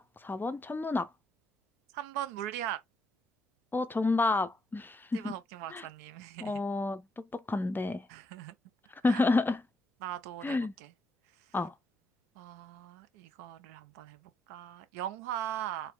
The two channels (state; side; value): normal; both; correlation 0.76